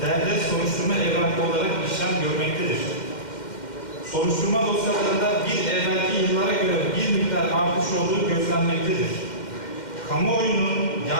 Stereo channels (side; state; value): right; late; 2.1 ms